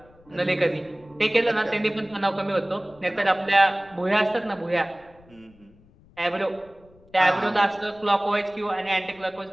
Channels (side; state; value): left; noise; rumble, 27 dB below the sound